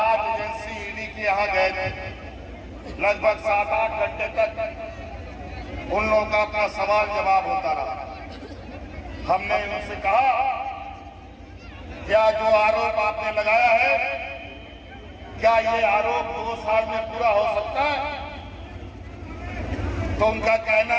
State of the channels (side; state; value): both; identical; correlation 1.00